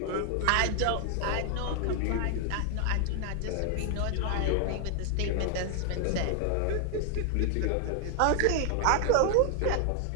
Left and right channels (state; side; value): different; both; correlation 0.00